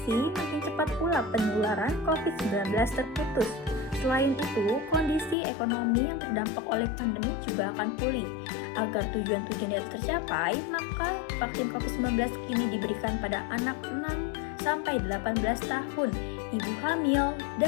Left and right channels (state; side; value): drops out; right; at 5.4 s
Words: makin cepat pula penularan COVID-19 terputus. Selain itu, kondisi ekonomi yang terdampak oleh pandemi juga akan pulih. Agar tujuan-tujuan itu tercapai, maka vaksin COVID-19 ini diberikan pada anak 6-18 tahun, ibu hamil,